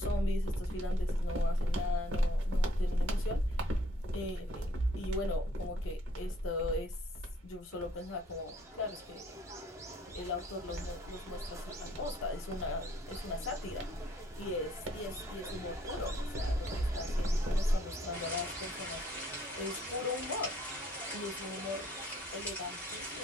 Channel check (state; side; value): normal; both; correlation 0.63